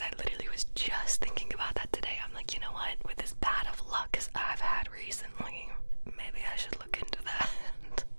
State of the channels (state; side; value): inverted; both; correlation -1.00